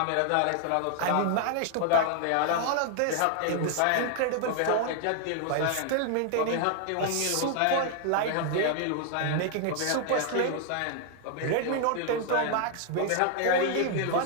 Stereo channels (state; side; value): different; both; correlation 0.00